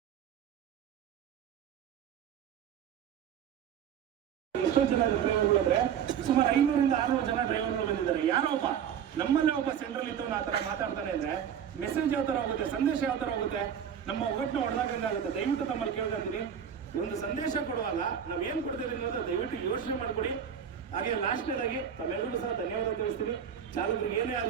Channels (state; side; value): quieter; left; 8.5 dB